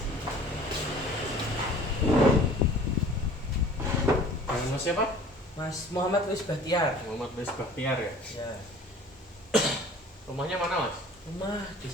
Mas siapa? Mas Muhammad Luis Bahtiar. Muhammad Luis Bahtiar ya. Ya, Rumahnya mana mas? rumah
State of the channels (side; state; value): both; normal; correlation 0.47